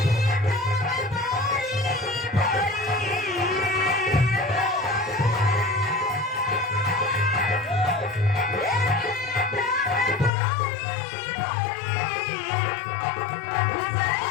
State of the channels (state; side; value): drops out; right; at 10.3 s